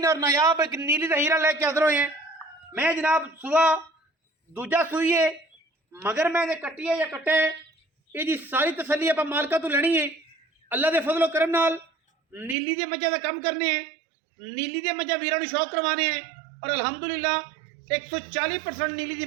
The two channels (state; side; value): drops out; left; at 12.6 s